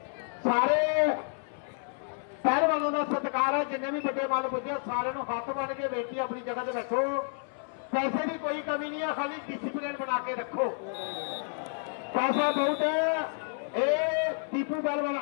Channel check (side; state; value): right; silent; 58 dB below the other